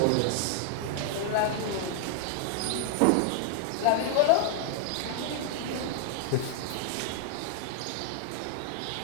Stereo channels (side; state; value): both; different; correlation 0.00